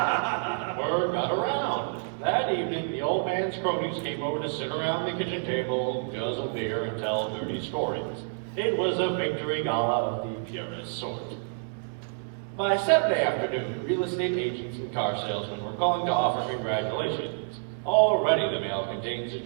Word got around. That evening, the old man's cronies came over to sit around the kitchen table, guzzle beer, and tell dirty stories. It was a victory gala of the purest sort. By Saturday afternoon, real estate agents and car salesmen were calling to offer congratulations. Already the mail contained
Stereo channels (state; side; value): silent; left; digital silence